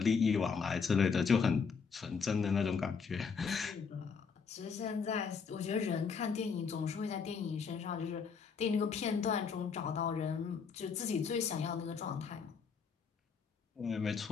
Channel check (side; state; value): right; quieter; 5.7 dB